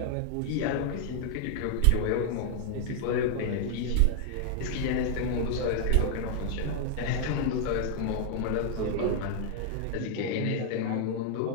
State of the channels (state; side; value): different; both; correlation 0.00